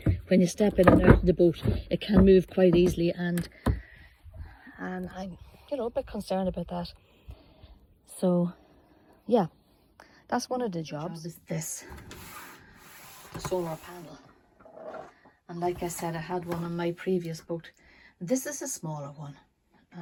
When you step in and out of the boat, it can move quite easily, and I'm, you know, a bit concerned about that. So yeah, that's one of the jobs. Is this, the solar panel. And like I said, I had one on my previous boat. This is a smaller one.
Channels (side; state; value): both; identical; correlation 1.00